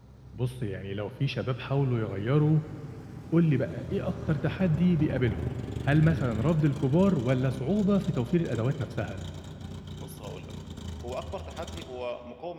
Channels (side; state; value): both; identical; correlation 1.00